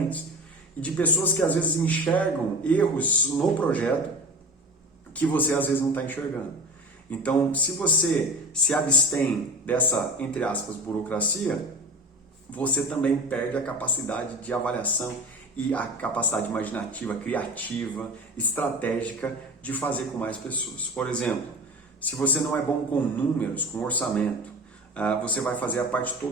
e de pessoas que às vezes enxergam erros no projeto que você às vezes não está enxergando. Então, se você se abstém dessa, entre aspas, burocracia, você também perde a capacidade de avaliação e a capacidade imaginativa, criativa, estratégica de fazer com mais pessoas. Por exemplo, se você não é bom com números, com orçamento, você vai fazer a parte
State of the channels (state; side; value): normal; both; correlation 0.33